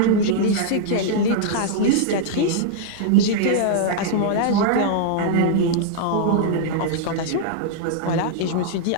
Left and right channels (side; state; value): both; different; correlation -0.01